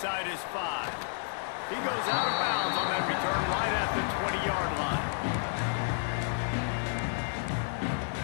his 5. He goes out of bounds on that return right at the 20-yard line.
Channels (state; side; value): silent; right; digital silence